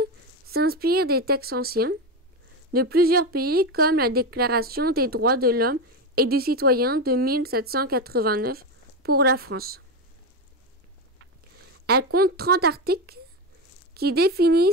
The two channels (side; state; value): both; normal; correlation 0.15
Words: s'inspire des textes anciens de plusieurs pays comme la Déclaration des droits de l'homme et du citoyen de 1789 pour la France. Elle compte 30 articles qui